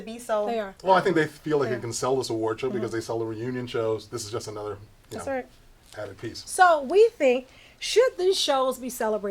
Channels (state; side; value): identical; both; correlation 1.00